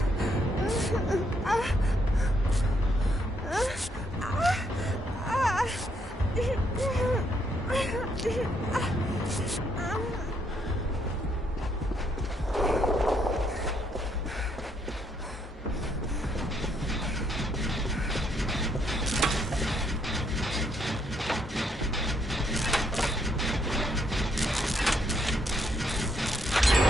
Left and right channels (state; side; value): normal; both; correlation 0.74